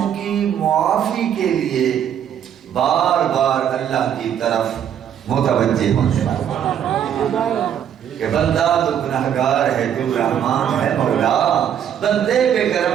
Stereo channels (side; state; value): left; quieter; 9.3 dB